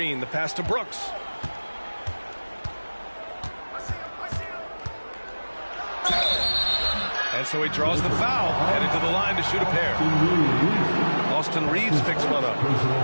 the pass to Brooks. And so he draws the foul, headed to the line to shoot a pair. Austin Reeves picks one up.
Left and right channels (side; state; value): both; inverted; correlation -1.00